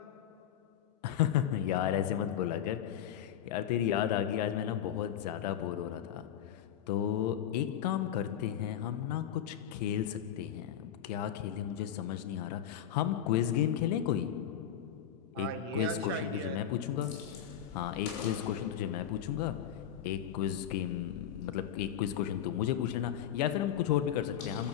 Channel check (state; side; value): quieter; right; 9.7 dB